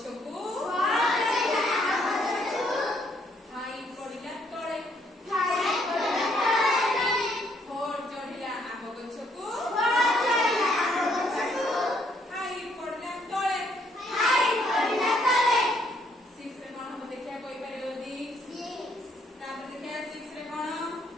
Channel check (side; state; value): both; normal; correlation 0.69